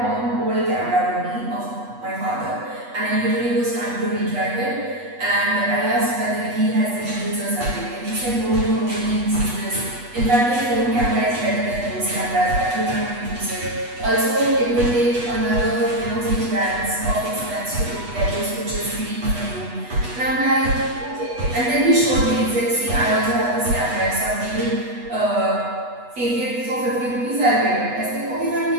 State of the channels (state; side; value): late; left; 8.2 ms